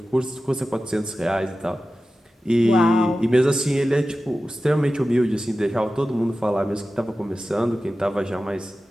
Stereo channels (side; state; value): both; normal; correlation 0.94